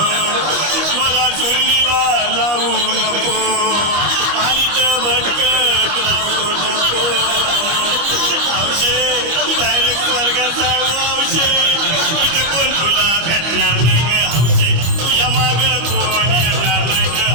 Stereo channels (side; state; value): left; late; 25 ms